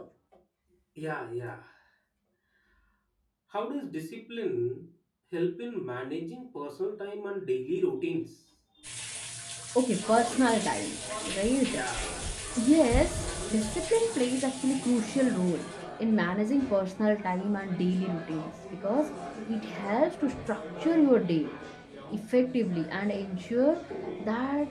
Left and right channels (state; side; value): identical; both; correlation 1.00